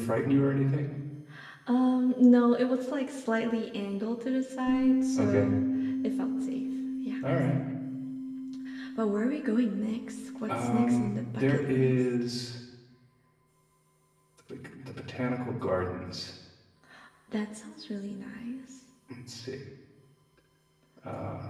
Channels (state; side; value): identical; both; correlation 1.00